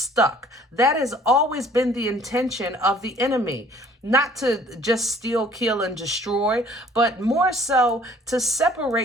That has always been the intention of the enemy. Not to just steal, kill, and destroy, but more so to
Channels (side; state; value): both; normal; correlation 0.55